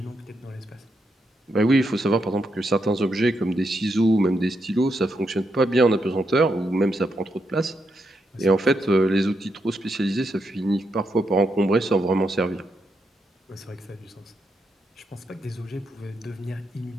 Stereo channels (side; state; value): both; normal; correlation 0.81